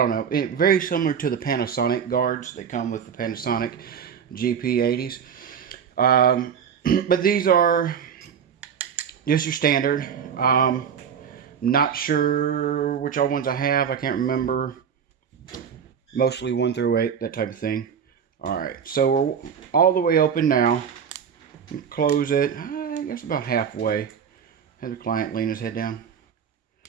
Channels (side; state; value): left; quieter; 7.5 dB